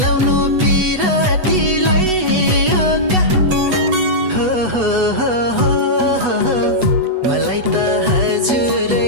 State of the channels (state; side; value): late; left; 8.1 ms